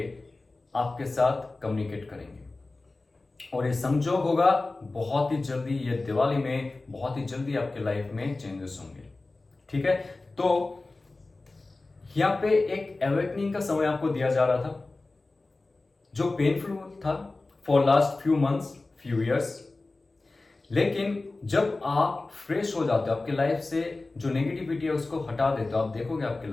आपके साथ कम्युनिकेट करेंगे और ये संजोग होगा बहुत ही जल्दी, ये दिवाली में बहुत ही जल्दी आपके लाइफ में चेंजेस होंगे। ठीक है, तो यहां पे एक अवेकनिंग का समय आपको दिया जा रहा था जो पेनफुल था for last few months, few years. लेकिन जब आप फ्रेश हो जाते हो, आपके लाइफ से जो नेगेटिविटी है उसको हटा देते हो, आप देखोगे आपके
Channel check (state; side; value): quieter; right; 3.3 dB